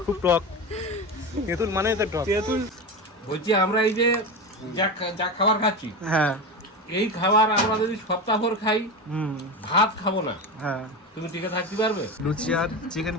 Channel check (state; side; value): normal; both; correlation 0.22